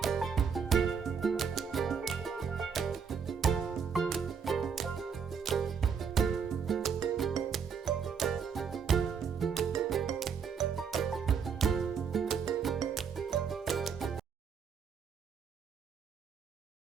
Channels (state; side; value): quieter; left; 6.6 dB